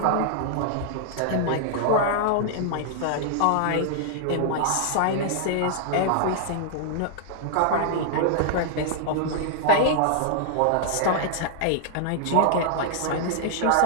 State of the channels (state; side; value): different; both; correlation -0.01